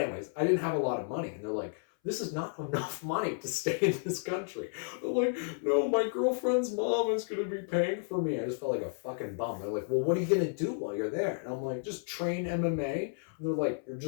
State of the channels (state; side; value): silent; right; 56 dB below the other